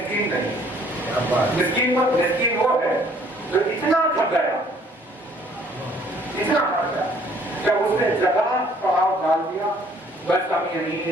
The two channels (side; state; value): both; normal; correlation 0.59